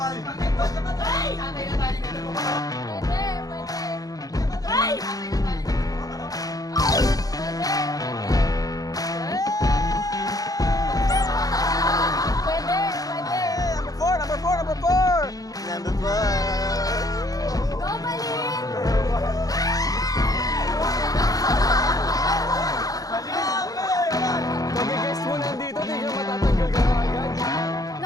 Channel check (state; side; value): late; right; 0.18 ms